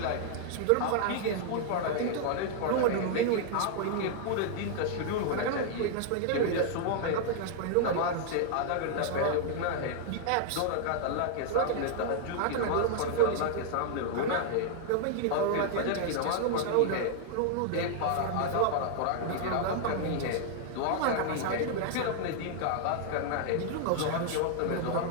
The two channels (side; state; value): both; different; correlation 0.00